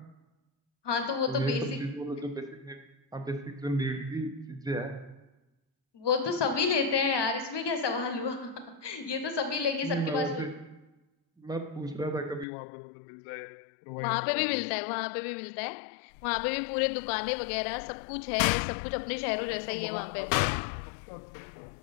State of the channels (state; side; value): drops out; right; at 12.5 s